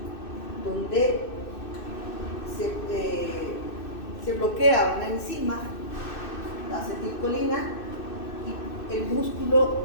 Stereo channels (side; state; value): right; late; 2.6 ms